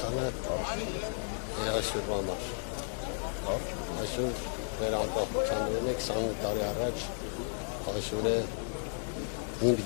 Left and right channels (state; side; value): silent; right; digital silence